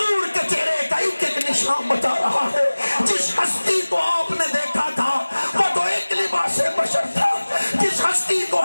کے چہرے کا ایک ایک نشان بتا رہا ہے۔ جس ہستی کو آپ نے دیکھا تھا وہ تو ایک لباس بشر تھا، جس ہستی کو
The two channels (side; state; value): both; inverted; correlation -1.00